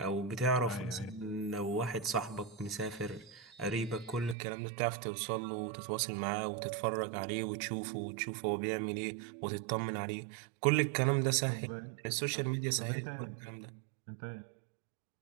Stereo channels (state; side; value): drops out; left; at 4.4 s